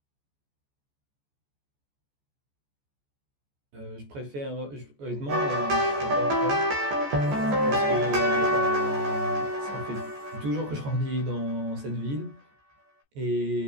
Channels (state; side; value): late; left; 14 ms